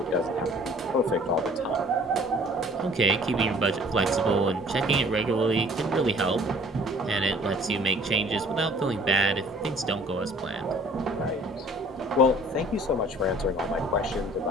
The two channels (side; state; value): both; normal; correlation 0.53